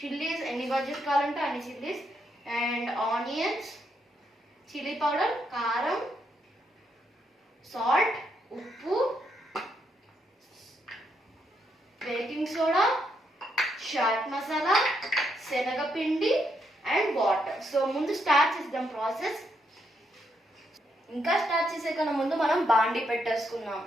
ఎన్ని బజ్జీస్ కావాలంటే అన్ని chillies, and onions, chilli powder, కారం, సాల్ట్, ఉప్పు, బేకింగ్ సోడా, చాట్ మసాలా, శనగపిండి అండ్ వాటర్. సో ముందు స్టార్ట్ చేద్దాం ప్రాసెస్. ఇంకా స్టార్ట్ చేసే కన్నా ముందు మనం బాండి పెట్టేసుకున్నాం.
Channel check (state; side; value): normal; both; correlation 0.78